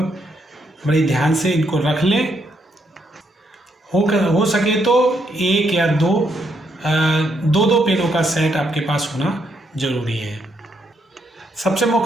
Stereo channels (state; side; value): normal; both; correlation 0.76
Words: ध्यान से इनको रख लें। हो सके तो एक या दो पेनों का सेट आपके पास होना जरूरी है। सबसे